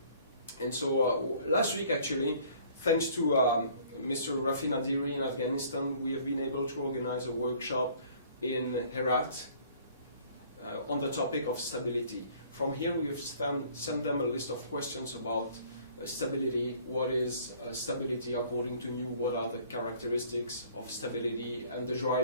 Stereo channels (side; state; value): both; inverted; correlation -0.55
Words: And so last week, actually, thanks to Mr. Rafi Nadiri in Afghanistan, we have been able to organize a workshop in Herat on the topic of stability. From here, we have sent them a list of questions about stability. What is stability according to you? What are the characteristics of stability and the